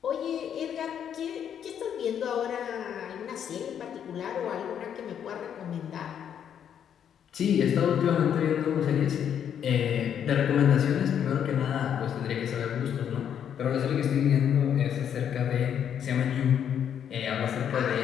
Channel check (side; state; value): right; quieter; 8.9 dB